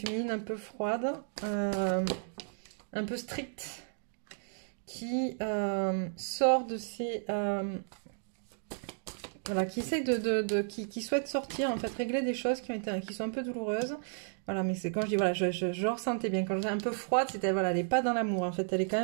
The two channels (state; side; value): silent; left; digital silence